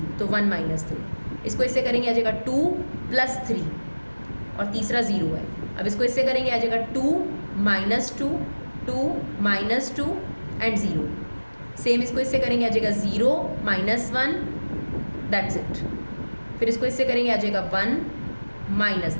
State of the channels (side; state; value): both; inverted; correlation -1.00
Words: तो 1 -3। इसको इससे करेंगे आ जाएगा 2 + 3 और तीसरा 0 है। अब इसको इससे करेंगे आ जाएगा 2 -2 2 -2 एंड 0। सेम इसको इससे करेंगे आ जाएगा 0 -1, दैट्स इट। फिर इसको इससे करेंगे आ जाएगा 1